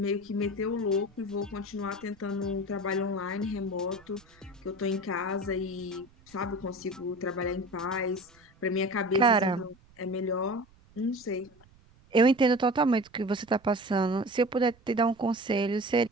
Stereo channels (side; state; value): right; noise; rumble, 28 dB below the sound